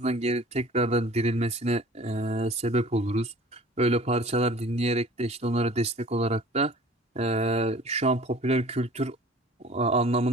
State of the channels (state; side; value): normal; both; correlation 0.46